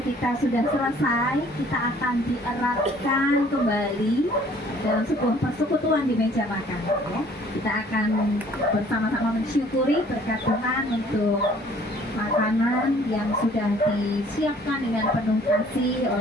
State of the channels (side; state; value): both; normal; correlation 0.56